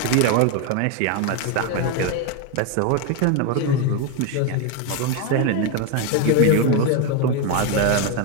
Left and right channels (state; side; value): different; both; correlation 0.02